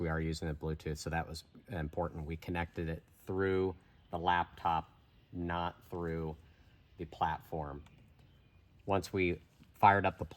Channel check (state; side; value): identical; both; correlation 1.00